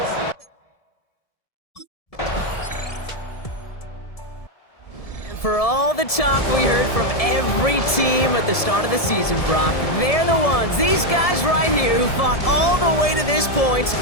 For all the talk we heard from every team at the start of the season, Brock, they're the ones, these guys right here, who fought all the way to this point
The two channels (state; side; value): late; right; 1.7 ms